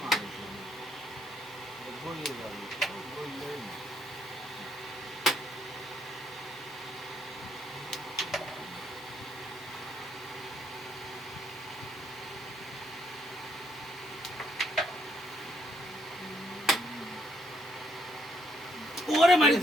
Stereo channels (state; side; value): noise; right; hum, 28 dB below the sound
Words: মারিছে বলিয়ে যাবে বললেই না ওরে মারি